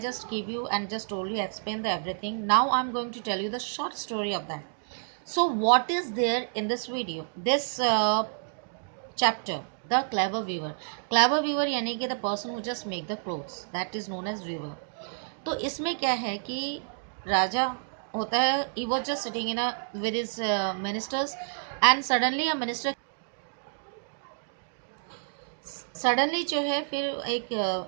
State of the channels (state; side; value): silent; left; digital silence